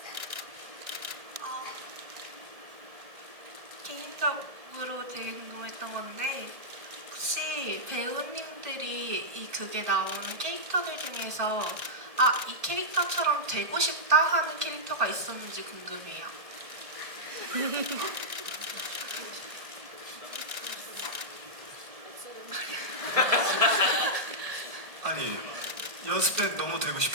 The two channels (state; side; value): late; left; 1.6 ms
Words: 개인적으로 되게 궁금했던 건데 혹시 배우님들이 이 극에 나오는 캐릭터들 중에서 이 캐릭터처럼 되고 싶다 하는 캐릭터가 있었는지 궁금해요. 아니 연습 때 너무 되고